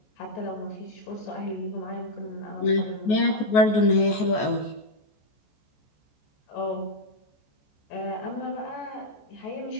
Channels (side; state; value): right; late; 14 ms